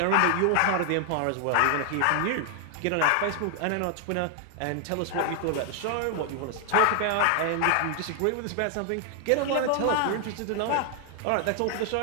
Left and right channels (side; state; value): both; different; correlation 0.00